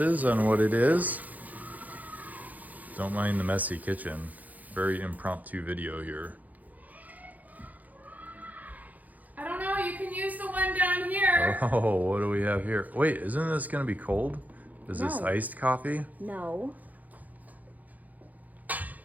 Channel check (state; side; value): late; left; 0.079 ms